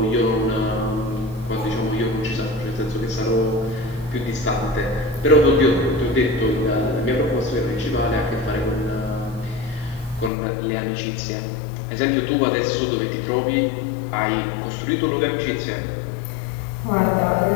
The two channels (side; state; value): right; drops out; at 10.3 s